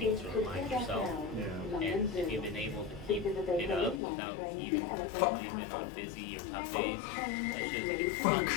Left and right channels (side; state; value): right; drops out; at 4.0 s